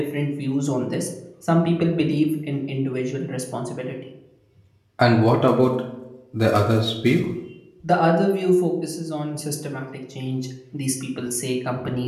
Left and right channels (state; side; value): identical; both; correlation 1.00